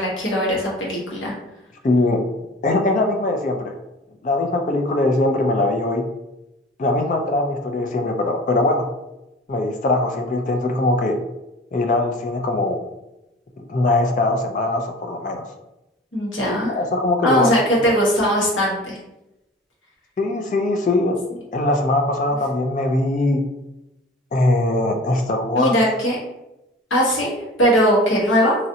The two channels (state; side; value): normal; both; correlation 0.40